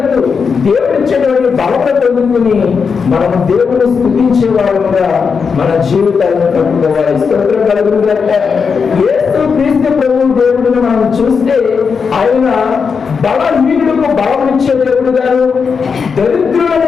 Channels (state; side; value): quieter; right; 5.7 dB